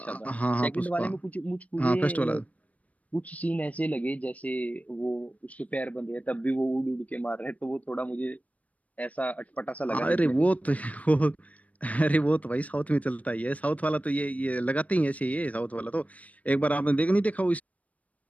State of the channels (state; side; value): late; right; 0.069 ms